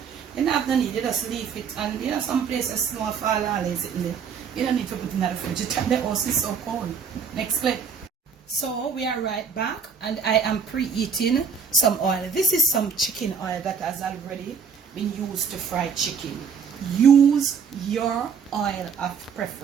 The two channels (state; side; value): quieter; left; 6.2 dB